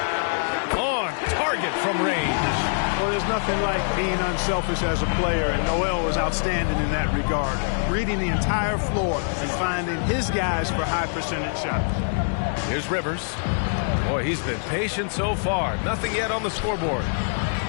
On target from range. Well, there's nothing like being unselfish as a player, and Noel was outstanding in that regard. Reading the entire floor and finding his guys for high percentage shots. Here's Rivers. Boy, he's been patient so far. Nothing yet on the scoreboard.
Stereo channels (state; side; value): silent; right; digital silence